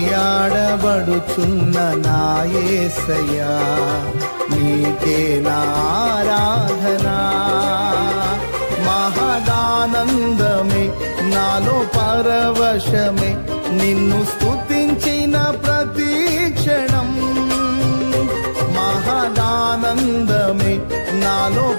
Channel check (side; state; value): both; inverted; correlation -1.00